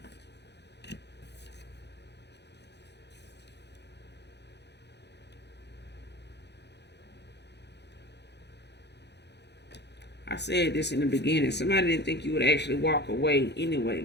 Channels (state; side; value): late; right; 0.50 ms